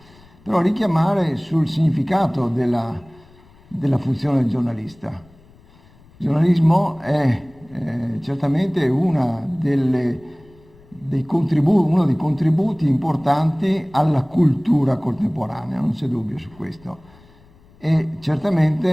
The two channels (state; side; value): noise; left; rumble, 27 dB below the sound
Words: Però richiamare sul significato della funzione del giornalista. Il giornalismo è certamente uno dei contributi importanti alla cultura contemporanea, non c'è dubbio su questo. E